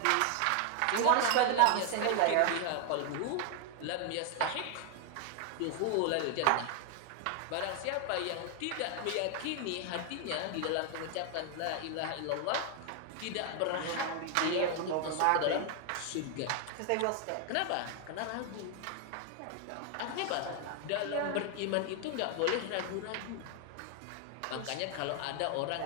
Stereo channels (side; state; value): both; different; correlation 0.00